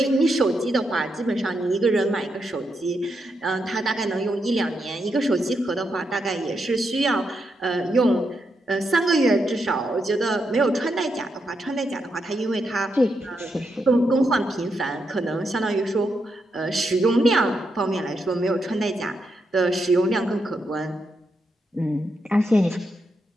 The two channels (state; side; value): normal; both; correlation 0.82